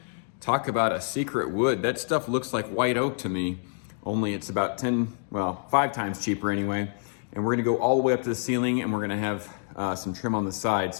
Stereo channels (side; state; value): right; silent; 60 dB below the other